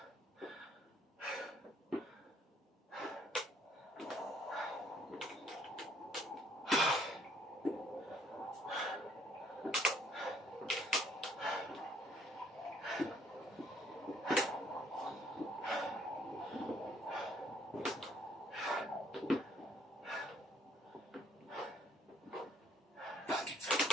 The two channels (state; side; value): normal; both; correlation 0.63